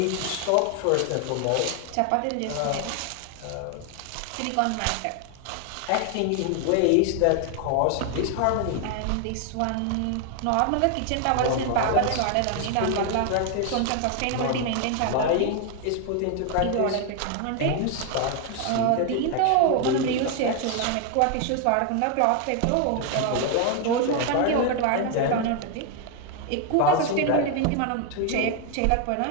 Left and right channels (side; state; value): both; different; correlation 0.01